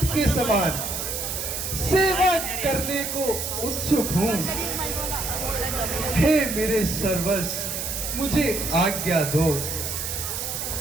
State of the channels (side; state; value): right; noise; hiss, 4 dB below the sound